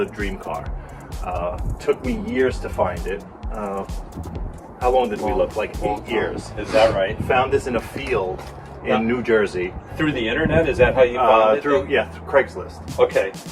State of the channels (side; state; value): both; identical; correlation 1.00